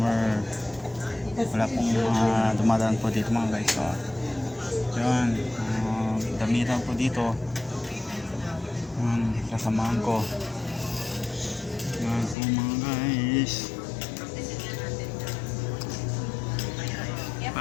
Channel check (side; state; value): right; drops out; at 12.4 s